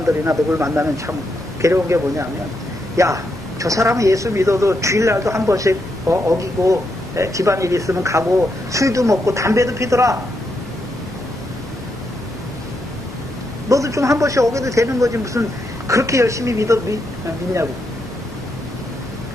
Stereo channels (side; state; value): both; normal; correlation 0.81